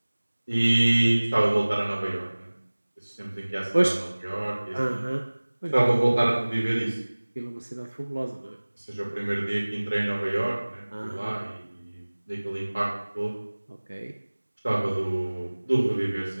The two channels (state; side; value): inverted; both; correlation -1.00